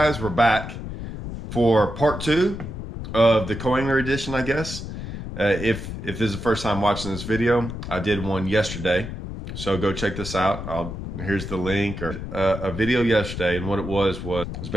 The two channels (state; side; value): noise; left; rumble, 8 dB below the sound